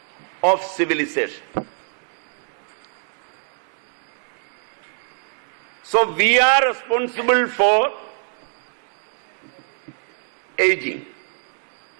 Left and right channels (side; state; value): left; silent; 63 dB below the other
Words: of civilization. So we are responsible for aging.